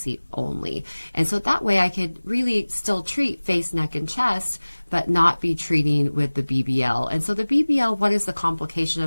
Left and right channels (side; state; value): both; inverted; correlation -1.00